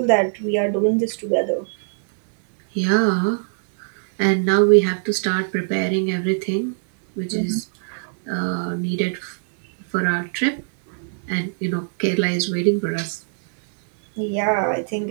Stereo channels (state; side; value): silent; left; 64 dB below the other